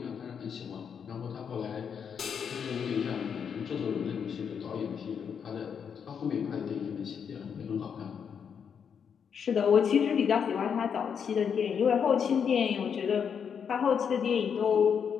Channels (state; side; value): quieter; right; 7.2 dB